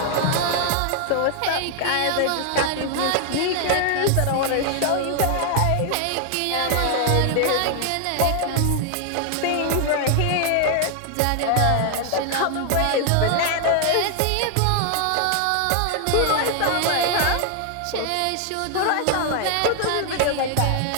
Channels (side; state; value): both; different; correlation 0.00